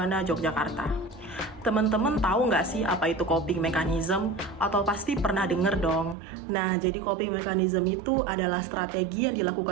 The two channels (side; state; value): left; drops out; at 6.2 s